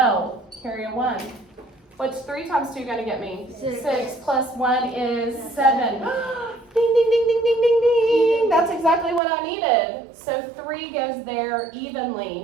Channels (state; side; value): drops out; left; at 9.2 s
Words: Carry a 1. What's 3 times 2 going to get me? 6 plus 1 is 7. Ding, ding, ding, ding, ding, ding, ding. That's exactly what I needed. So 3 goes there